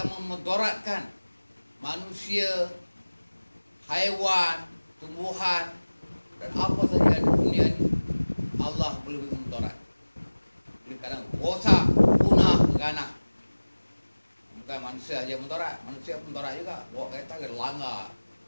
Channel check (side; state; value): both; inverted; correlation -1.00